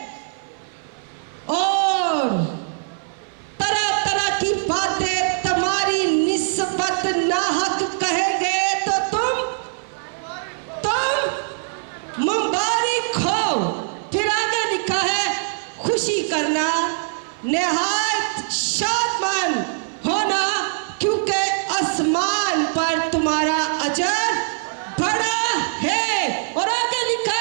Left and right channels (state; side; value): silent; left; 58 dB below the other